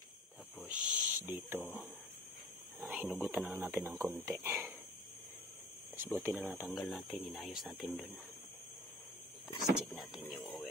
Tapos dito, hinugutan na natin ng konti. Tapos buti na natanggal natin, inayos natin dun. Tapos check natin yung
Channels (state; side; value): normal; both; correlation 0.46